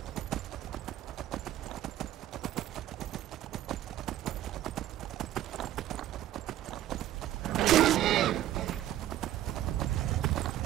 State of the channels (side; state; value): left; quieter; 13.1 dB